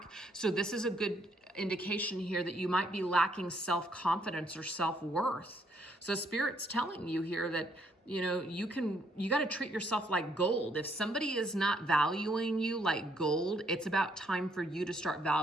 So this is a good indication here that you might be lacking self-confidence or self-worth. So Spirit's telling you here that, you got to treat yourself like gold. If somebody is not valuing you like gold, it's about time for you to start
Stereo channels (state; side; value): normal; both; correlation 0.70